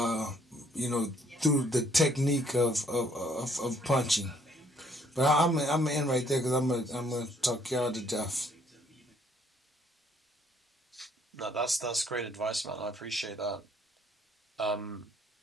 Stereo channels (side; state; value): both; normal; correlation 0.66